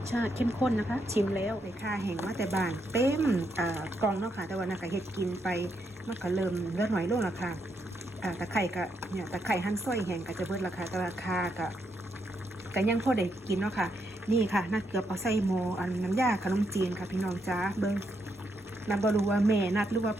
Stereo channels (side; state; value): both; normal; correlation 0.79